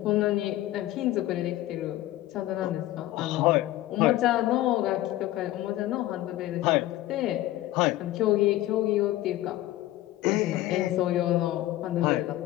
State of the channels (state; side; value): quieter; right; 15.4 dB